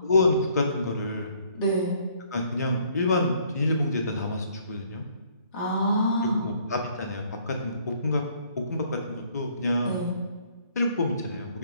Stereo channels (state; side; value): inverted; both; correlation -0.63